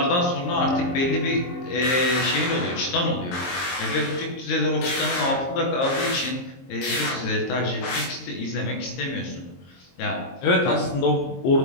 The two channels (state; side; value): late; right; 23 ms